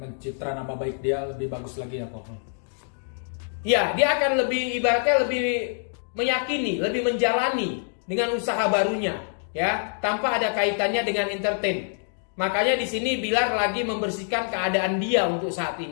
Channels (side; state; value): right; silent; digital silence